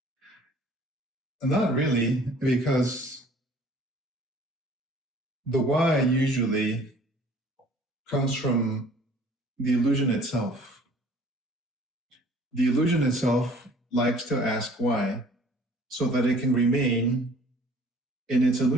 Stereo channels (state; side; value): normal; both; correlation 0.52